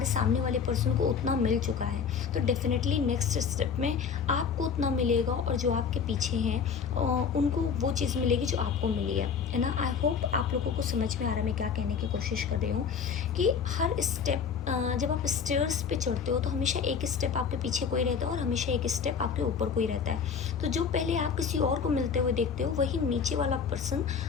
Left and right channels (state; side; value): quieter; right; 6.4 dB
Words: सामने वाले पर्सन को उतना मिल चुका है, तो डेफिनेटली नेक्स्ट स्टेप में आपको उतना मिलेगा और जो आपके पीछे हैं उनको वो चीज़ मिलेगी जो आपको मिली है ना। आई होप आप लोगों को समझ में आ रहा है मैं क्या कहने की कोशिश कर रही हूँ कि हर स्टेप जब आप स्टेयर्स पे चढ़ते हो तो हमेशा एक स्टेप आपके पीछे कोई रहता है और हमेशा एक स्टेप आपके ऊपर कोई रहता है। तो जो पहले आप किसी और को मिलते हुए देखते हो वही नीचे वाला पर्सन